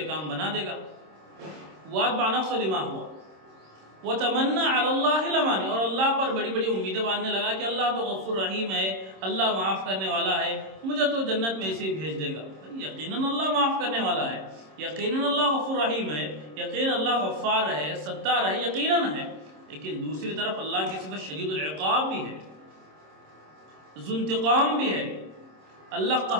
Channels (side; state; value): left; late; 26 ms